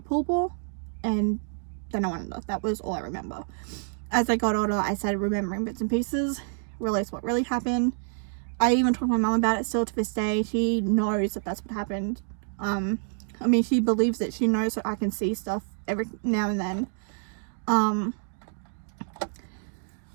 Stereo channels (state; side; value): silent; left; digital silence